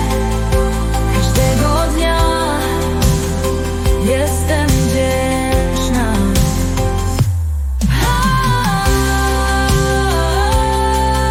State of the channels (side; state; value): both; identical; correlation 1.00